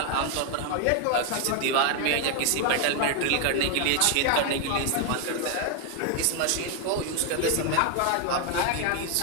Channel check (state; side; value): different; both; correlation 0.01